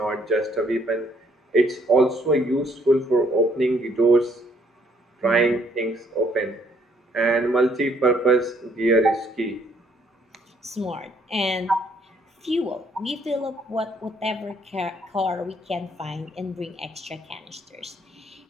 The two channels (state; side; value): normal; both; correlation 0.66